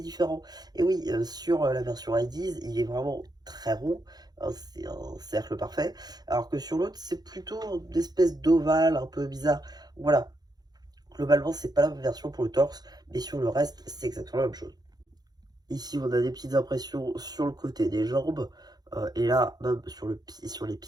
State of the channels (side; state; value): left; late; 0.19 ms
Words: différent. Et oui, sur la version IDs, il est vraiment très rond, hein, c'est un cercle parfait. Alors que sur l'autre, c'est plutôt une espèce d'ovale un peu bizarre. Voilà, globalement, c'est pas la même version pour le torse, mais sur le reste, c'est exactement la même chose. Ici, on a des petites impressions sur le côté des jambes. Et là, même sur les